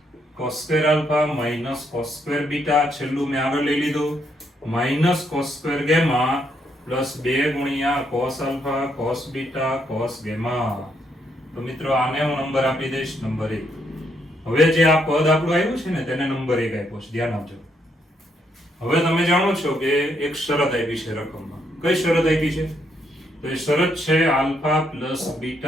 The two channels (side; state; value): both; normal; correlation 0.75